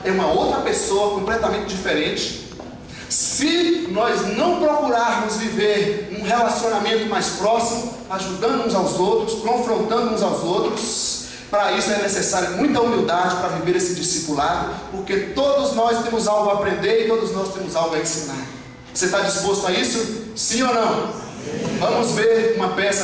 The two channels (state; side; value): identical; both; correlation 1.00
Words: é uma outra pessoa completamente diferente. Se nós não procurarmos viver um relacionamento mais próximo, ajudando uns aos outros, confrontando uns aos outros, para isso é necessária muita humildade para viver esse discipulado, porque todos nós temos algo a aprender e todos nós temos algo a ensinar. Você está disposto a isso? Sim ou não? Vamos ver uma peça